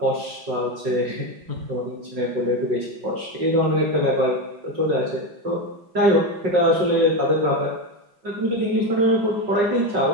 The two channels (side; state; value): left; late; 5.4 ms